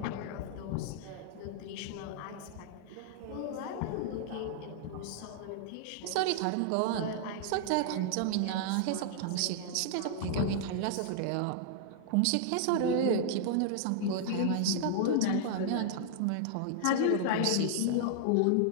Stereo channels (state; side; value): different; both; correlation -0.01